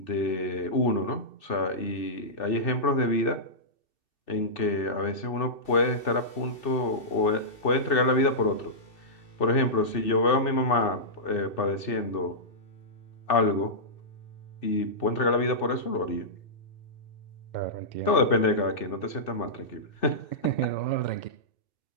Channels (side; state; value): right; late; 2.7 ms